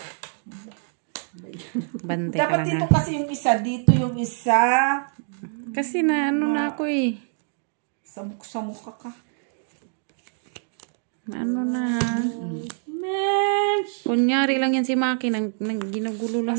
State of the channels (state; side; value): silent; left; 62 dB below the other